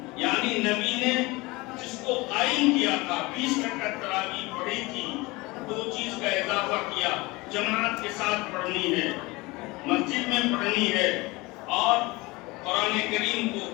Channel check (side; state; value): right; quieter; 22.9 dB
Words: یعنی نبی نے جس کو قائم کیا تھا, 20 رکعت تراویح پڑھی تھی, 2 چیز کا اضافہ کیا. جماعت کے ساتھ پڑھنی ہے, مسجد میں پڑھنی ہے, اور قرآن کریم کو